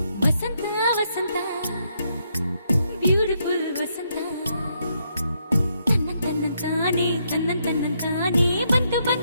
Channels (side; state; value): both; inverted; correlation -0.76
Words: ವಸಂತ ವಸಂತ ಬ್ಯೂಟಿಫುಲ್ ವಸಂತ ತನ್ನಂತಾನೆ ಬಂತು